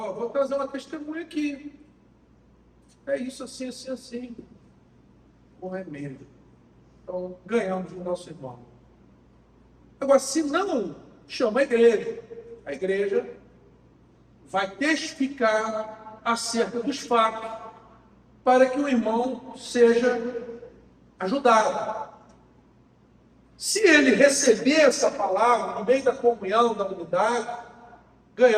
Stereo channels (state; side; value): identical; both; correlation 1.00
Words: trazer uma testemunha aqui. É isso, assim, assim, assim. Com remédio. Então, ganhamos o nosso irmão. Agora, se não, chama a igreja vai testificar acerca dos fatos para que o irmão seja ajudado. Se ele receber essa palavra no meio da comunhão, da unidade,